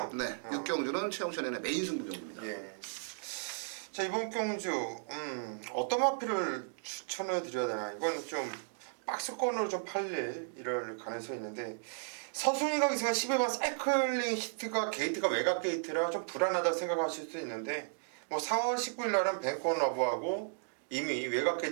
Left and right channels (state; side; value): silent; left; digital silence